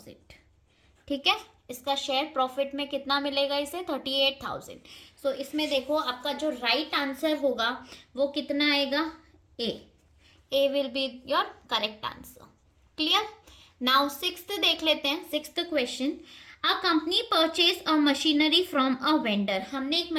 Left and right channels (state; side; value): identical; both; correlation 1.00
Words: ठीक है। इसका शेयर प्रॉफिट में कितना मिलेगा इसे 38,000। सो इसमें देखो आपका जो राइट आंसर होगा वो कितना आएगा, A will be your correct answer. Clear. Now sixth देख लेते हैं, sixth question. A company purchase a machinery from a vendor, हमने एक